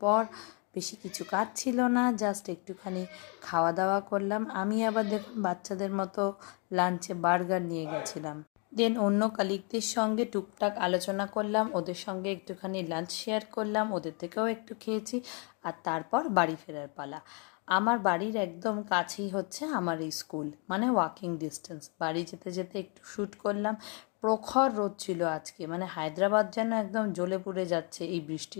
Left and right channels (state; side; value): quieter; right; 35.9 dB